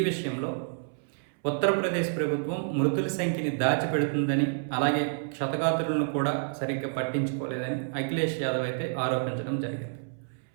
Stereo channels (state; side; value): silent; left; 59 dB below the other